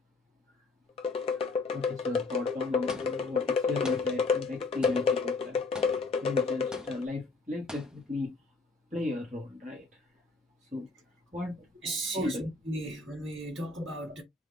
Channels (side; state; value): right; quieter; 3.7 dB